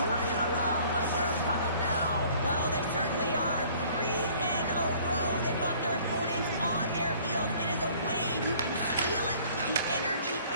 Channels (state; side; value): inverted; both; correlation -0.54